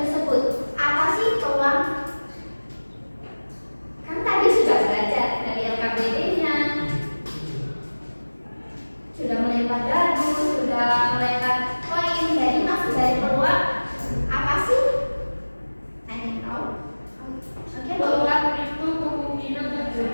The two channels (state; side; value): inverted; both; correlation -1.00